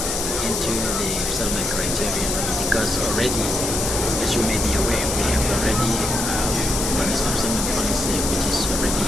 into the resettlement criteria, because already, as you may be aware, we have already the resettlement policy which is already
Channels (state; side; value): noise; left; hiss, 2 dB below the sound